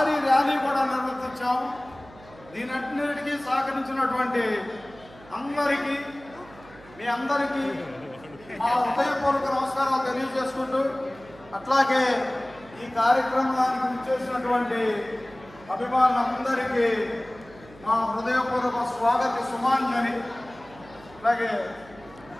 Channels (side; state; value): right; noise; hum, 22 dB below the sound